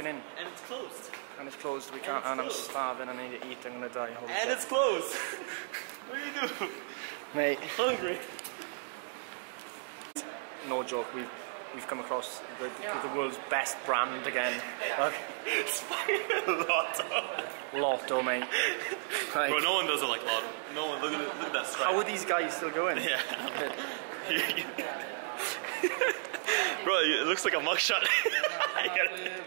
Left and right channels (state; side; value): silent; left; digital silence